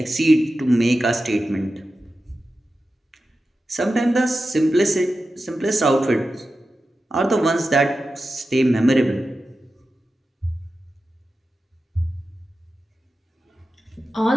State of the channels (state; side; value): normal; both; correlation 0.92